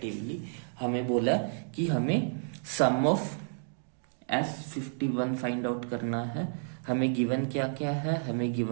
हमें बोला कि हमें सम ऑफ S51 फाइंड आउट करना है। हमें गिवन क्या क्या है, हमें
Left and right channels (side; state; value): left; silent; digital silence